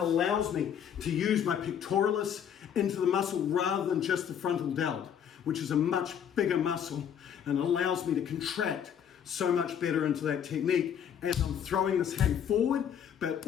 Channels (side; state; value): right; quieter; 8.6 dB